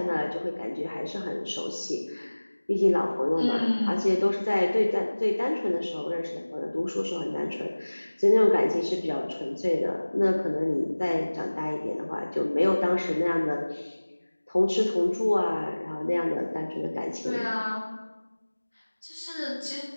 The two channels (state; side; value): inverted; both; correlation -1.00